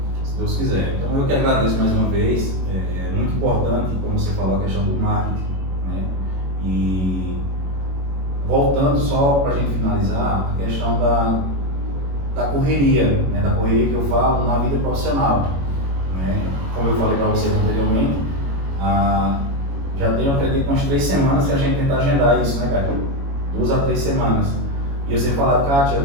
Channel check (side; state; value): left; late; 22 ms